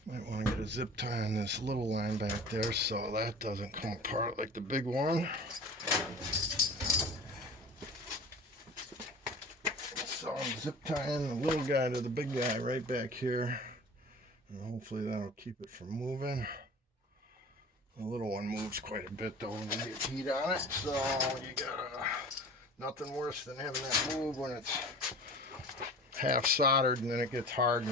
Might want to get a zip tie on this little line back there so that doesn't come apart like the big one. So I'm zip tying the little guy to the big guy right back here, and hopefully that'll keep it from moving. The little one moves quite a bit though when you get heat on it, so you gotta, nothing worse than having that move when it's half soldered and then it gets hard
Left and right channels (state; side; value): normal; both; correlation 0.40